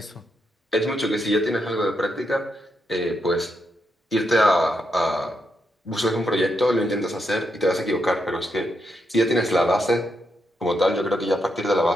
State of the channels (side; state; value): both; normal; correlation 0.82